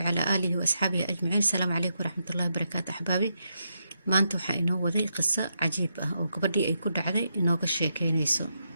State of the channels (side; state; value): both; inverted; correlation -0.82